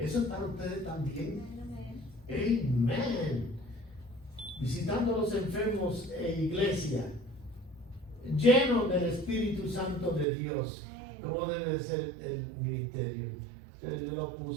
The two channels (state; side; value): drops out; left; at 10.2 s